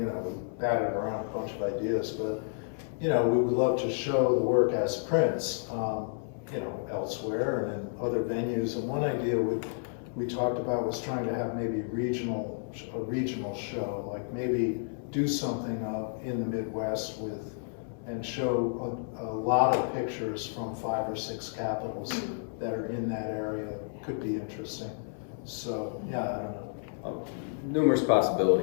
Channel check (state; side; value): silent; right; 57 dB below the other